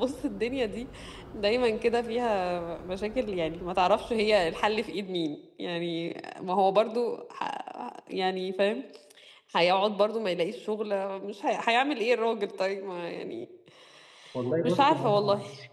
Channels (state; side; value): identical; both; correlation 1.00